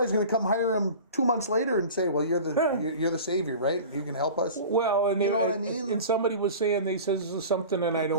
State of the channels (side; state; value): both; inverted; correlation -0.37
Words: going to come hire him 2 months later and say, "Well, you're the savior, right? You can help us." Well, and you know what I mean. And somebody was saying, they says this is something, and I